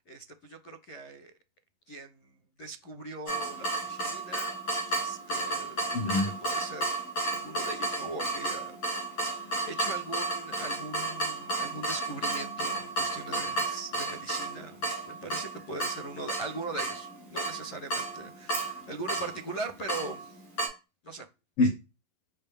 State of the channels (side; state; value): right; late; 11 ms